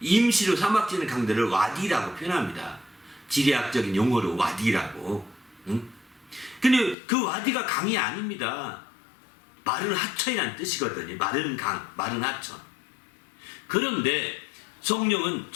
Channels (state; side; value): drops out; right; at 7.0 s